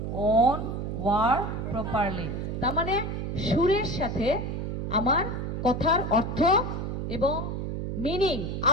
own work properly. তার মানে সুরের সাথে আমার কথার অর্থ এবং মিনিং,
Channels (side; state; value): right; noise; hum, 4 dB below the sound